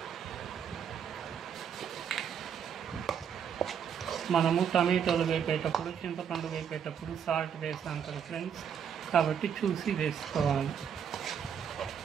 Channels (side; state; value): left; quieter; 7.8 dB